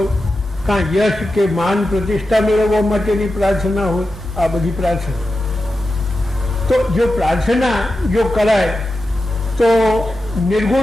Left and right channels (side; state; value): both; normal; correlation 0.91